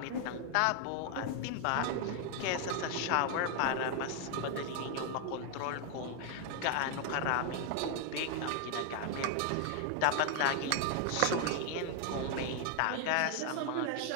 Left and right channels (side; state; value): both; different; correlation 0.00